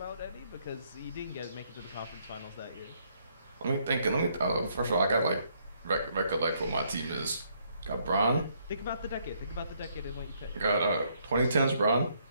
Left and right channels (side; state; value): both; inverted; correlation -0.70